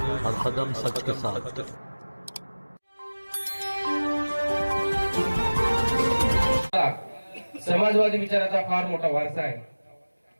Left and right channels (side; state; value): both; inverted; correlation -1.00